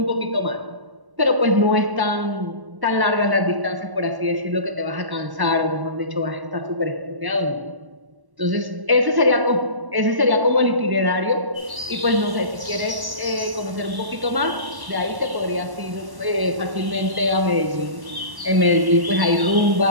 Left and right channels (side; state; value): left; late; 1.1 ms